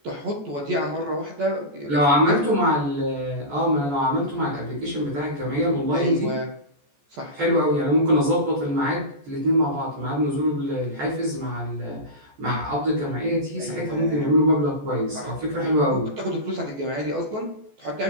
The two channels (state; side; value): late; left; 14 ms